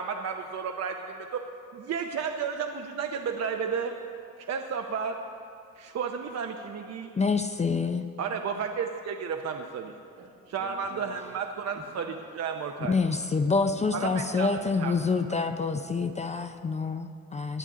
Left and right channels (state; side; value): normal; both; correlation 0.35